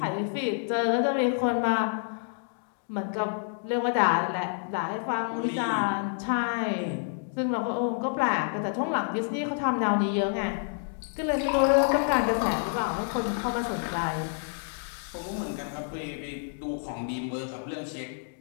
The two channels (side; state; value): right; silent; digital silence